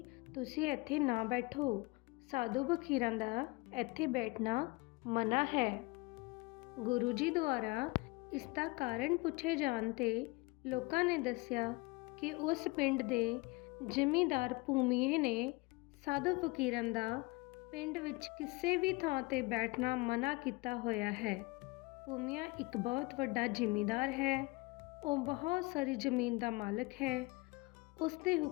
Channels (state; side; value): quieter; right; 24.4 dB